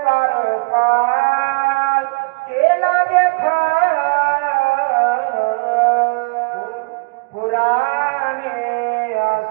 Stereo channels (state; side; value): quieter; left; 28.6 dB